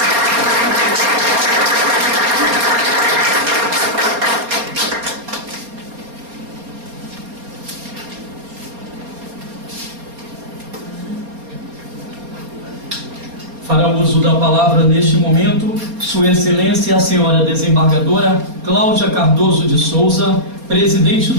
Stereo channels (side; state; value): left; late; 4.3 ms